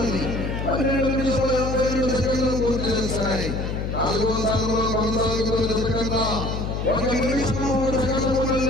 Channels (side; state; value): left; noise; hum, 3 dB below the sound